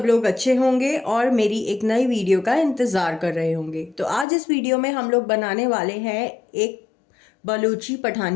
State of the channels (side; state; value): right; drops out; at 4.2 s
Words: लोग अच्छे होंगे और मेरी एक नई वीडियो का इंतज़ार कर रहे होंगे। तो आज इस वीडियो में हम लोग बनाने वाले हैं एक बलूची